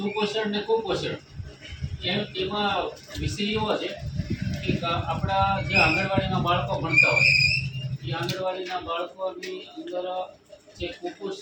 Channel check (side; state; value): both; identical; correlation 1.00